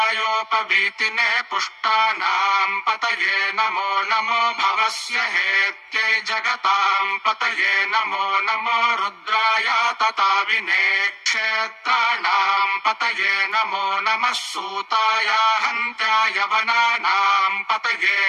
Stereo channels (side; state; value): both; identical; correlation 1.00